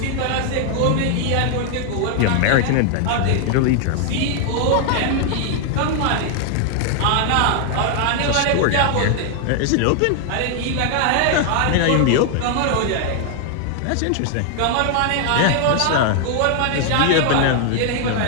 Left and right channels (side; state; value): both; different; correlation 0.00